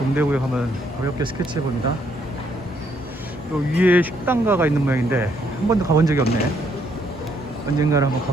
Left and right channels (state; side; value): normal; both; correlation 0.71